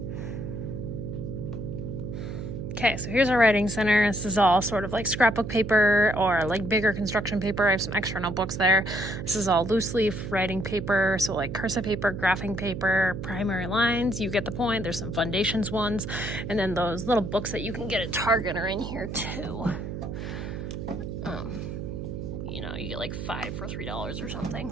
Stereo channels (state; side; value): noise; right; hum, 6 dB below the sound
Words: Okay, so here's our writing center. This is all sort of like scrapbook paper or like bigger construction paper. I have some extra notebooks there. This is all loose leaf writing paper. So like cursive paper, graphing paper, primary lines. You get the point. There's some foundations ones. And then those little books that you can get at Target are in here too. You know, you get like 5 for $3 or